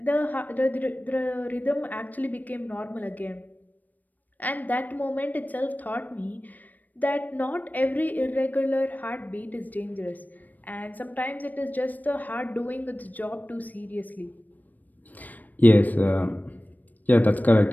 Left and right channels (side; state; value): right; late; 0.083 ms